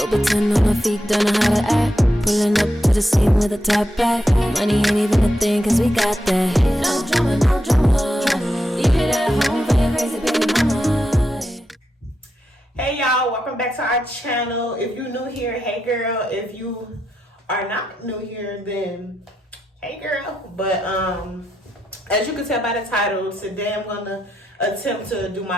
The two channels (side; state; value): both; normal; correlation 0.84